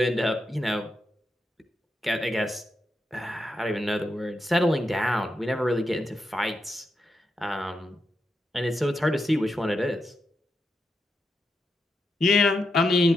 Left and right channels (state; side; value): normal; both; correlation 0.85